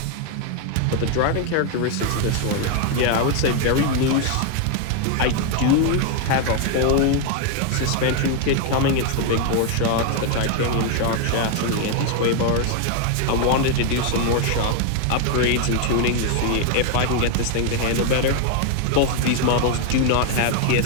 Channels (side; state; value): both; different; correlation 0.00